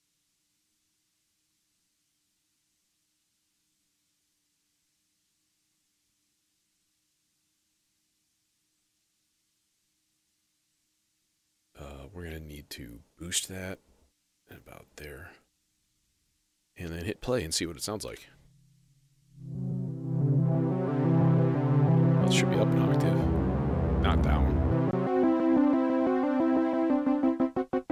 We're going to need to boost that about there. And then hit play and see what it sounds like. Well, it should be up an octave, not down.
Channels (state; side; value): identical; both; correlation 1.00